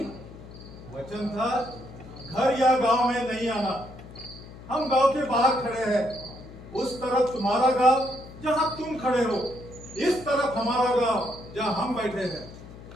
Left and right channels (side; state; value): left; noise; hum, 16 dB below the sound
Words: वचन था घर या गांव में नहीं आना। हम गांव के बाहर खड़े हैं, उस तरफ तुम्हारा गांव जहां तुम खड़े हो, इस तरफ हमारा गांव जहां हम बैठे हैं।